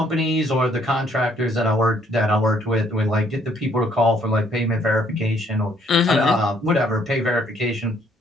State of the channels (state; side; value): normal; both; correlation 0.65